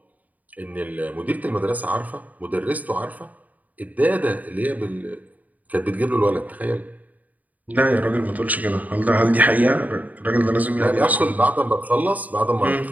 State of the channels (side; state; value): left; late; 0.076 ms